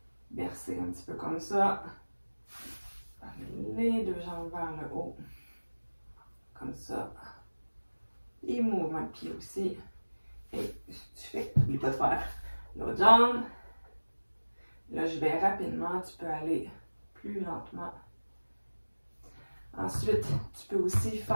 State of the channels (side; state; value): both; inverted; correlation -1.00